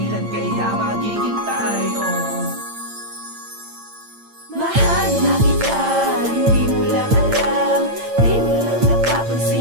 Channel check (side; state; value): left; late; 8.8 ms